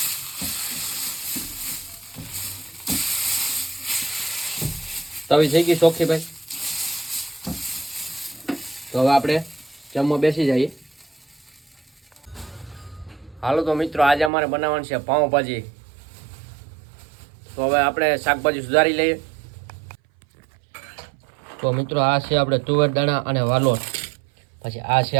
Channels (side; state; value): left; drops out; at 14.3 s